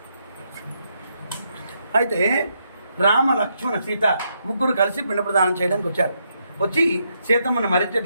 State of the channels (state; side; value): inverted; both; correlation -0.78